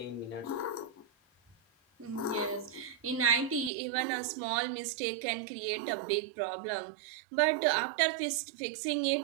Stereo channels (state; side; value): drops out; left; at 3.7 s